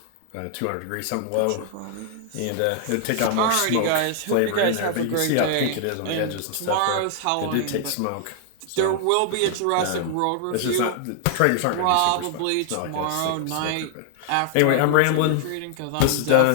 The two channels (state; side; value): different; both; correlation 0.00